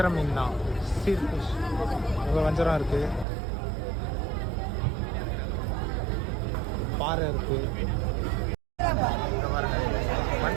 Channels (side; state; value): left; drops out; at 3.2 s